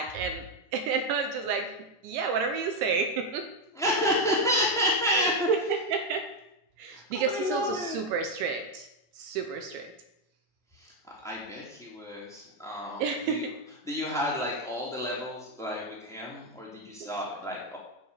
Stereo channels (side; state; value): both; normal; correlation 0.03